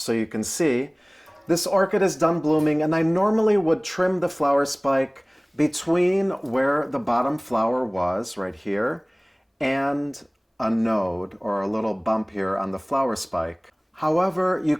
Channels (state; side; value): identical; both; correlation 1.00